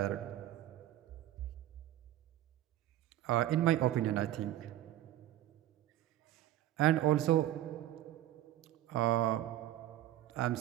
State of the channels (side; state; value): left; quieter; 13.7 dB